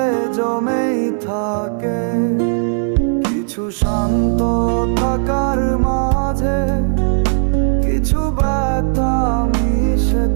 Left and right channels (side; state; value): left; silent; digital silence